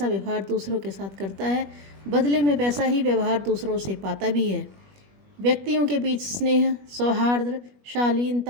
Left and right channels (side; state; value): left; late; 21 ms